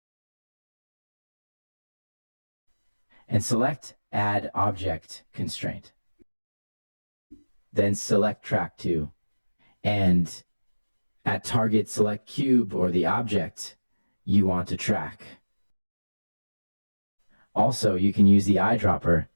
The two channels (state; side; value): inverted; both; correlation -1.00